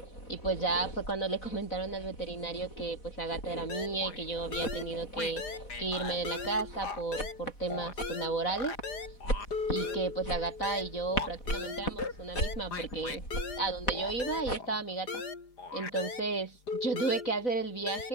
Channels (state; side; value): late; right; 4.9 ms